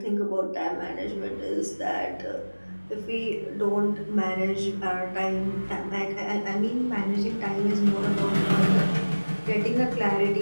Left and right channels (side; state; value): both; inverted; correlation -1.00